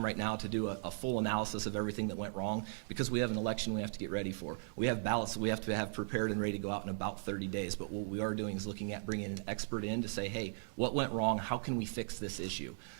right now to do a full analysis of everything that went wrong, because we have an election we have to get ready for. We have ballots that we have to have prepared and ready to go out in about 30 days. But what we are doing is looking at bringing an expert in to say, hey, what went wrong? How can we fix this issue?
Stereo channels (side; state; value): left; silent; digital silence